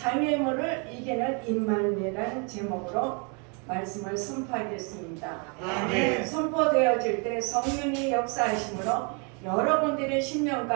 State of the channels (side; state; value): left; quieter; 35.7 dB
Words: 이기는 임마누엘이라는 제목으로 말씀을 선포하겠습니다. 아멘. 선포되어질 때 성령이 역사하심으로 여러분들의 심령